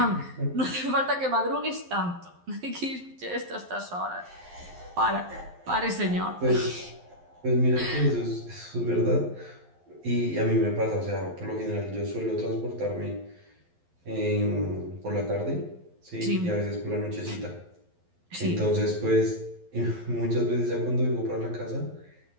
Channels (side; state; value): left; late; 11 ms